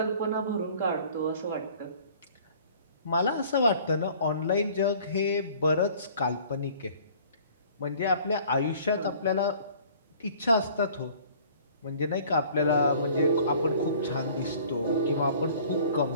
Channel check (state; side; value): inverted; both; correlation -0.52